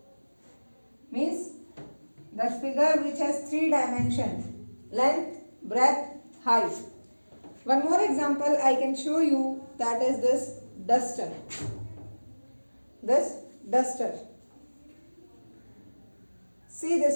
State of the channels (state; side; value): inverted; both; correlation -1.00